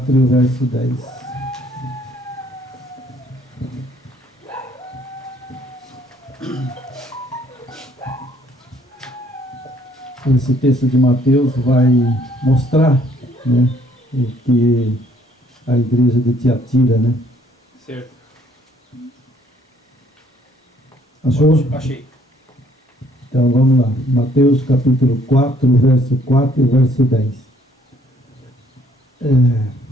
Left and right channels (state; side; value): normal; both; correlation 0.63